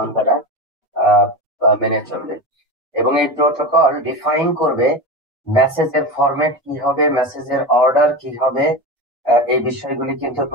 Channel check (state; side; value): normal; both; correlation 0.23